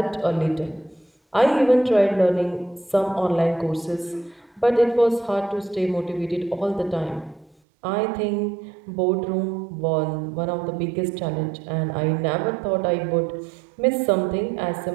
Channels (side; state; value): left; drops out; at 7.6 s